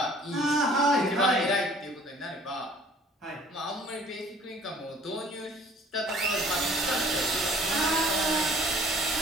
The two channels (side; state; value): both; normal; correlation 0.54